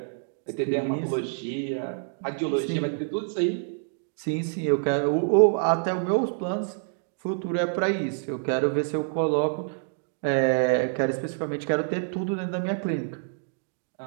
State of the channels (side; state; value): left; silent; digital silence